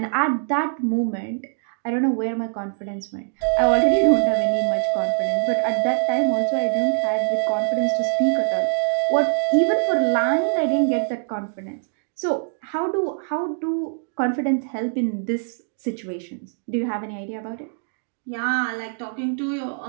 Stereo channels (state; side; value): silent; left; digital silence